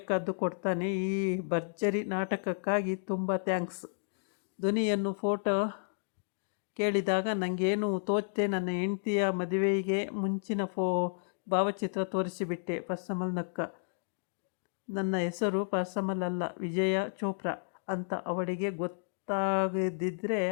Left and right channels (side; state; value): right; silent; digital silence